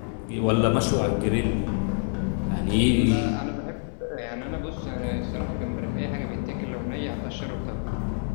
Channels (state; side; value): silent; right; 60 dB below the other